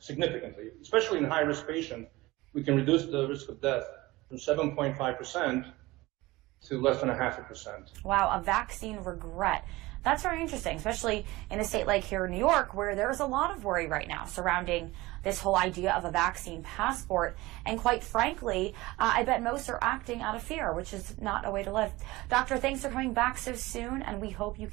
Especially in high-risk patients, we can reduce the risk of death from 7.5% to less than 0.5%. Wow, a vaccine regret. That's very interesting, especially in a state like here in New York, where there's a lot of worry right now surrounding this whole idea of a vaccine passport. And quite frankly, I bet most are acting out of fear, which is not a way to live. Doctor, thanks for coming back so soon, and we hope you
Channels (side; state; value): left; quieter; 20.1 dB